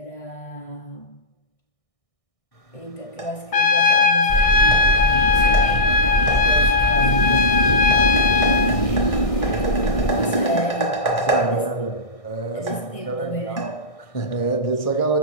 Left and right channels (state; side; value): late; right; 1.6 ms